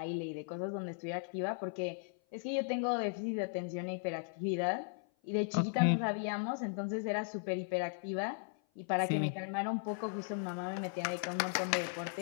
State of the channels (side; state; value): right; silent; 53 dB below the other